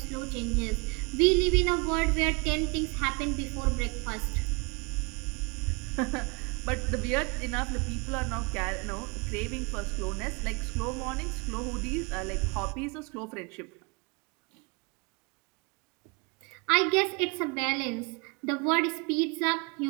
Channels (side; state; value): left; quieter; 30.3 dB